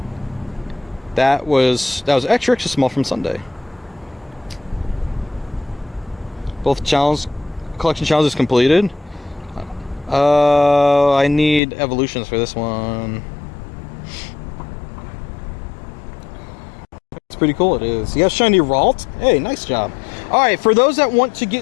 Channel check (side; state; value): right; drops out; at 11.6 s